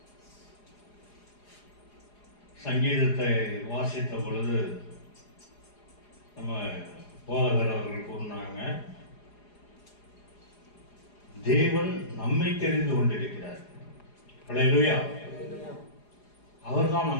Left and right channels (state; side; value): late; right; 4.9 ms